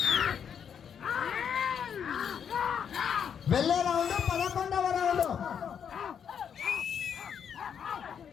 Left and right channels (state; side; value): quieter; right; 7.8 dB